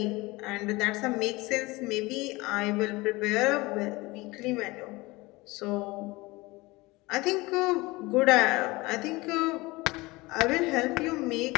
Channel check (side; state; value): right; quieter; 22.2 dB